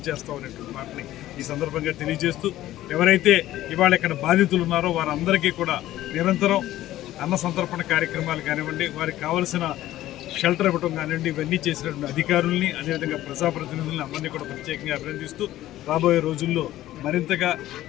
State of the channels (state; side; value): quieter; right; 14.5 dB